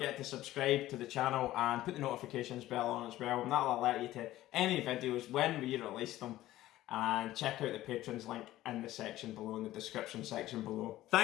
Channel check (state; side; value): quieter; right; 15.2 dB